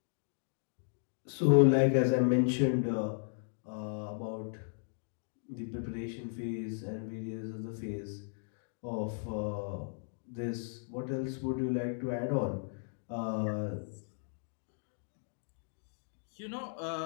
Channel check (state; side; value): silent; right; digital silence